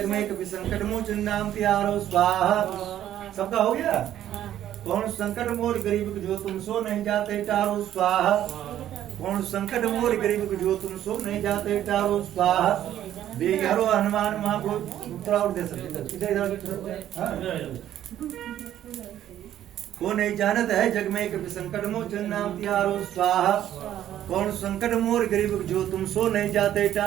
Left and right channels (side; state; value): left; quieter; 11.7 dB